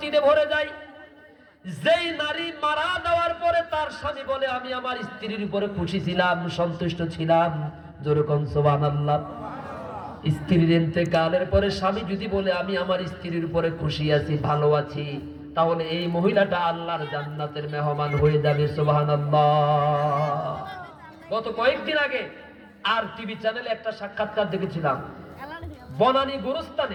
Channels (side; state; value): both; identical; correlation 1.00